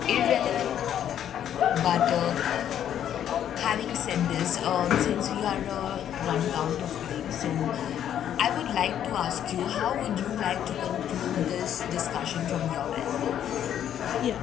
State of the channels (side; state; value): right; quieter; 10.1 dB